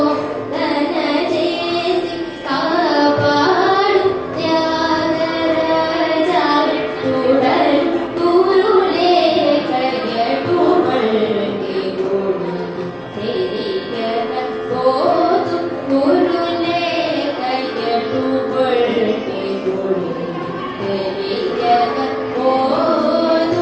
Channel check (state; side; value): identical; both; correlation 1.00